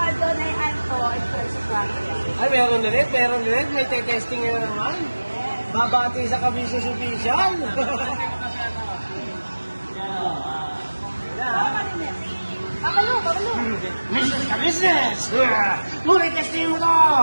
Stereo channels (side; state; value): both; inverted; correlation -1.00